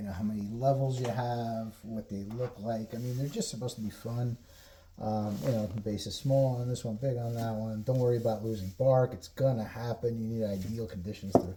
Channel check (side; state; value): both; identical; correlation 1.00